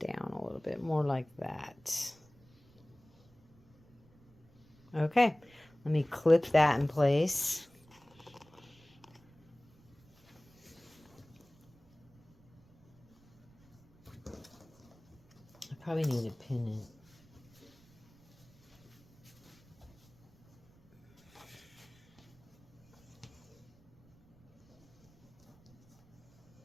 a little bit more like that. Okay. Let me clip that in place. I probably need to pin it.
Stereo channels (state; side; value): noise; right; rumble, 29 dB below the sound